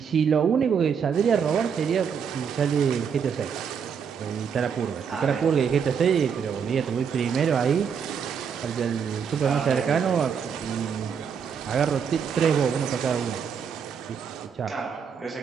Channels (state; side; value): quieter; left; 6.9 dB